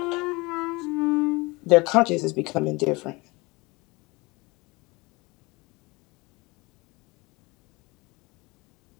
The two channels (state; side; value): quieter; right; 24.5 dB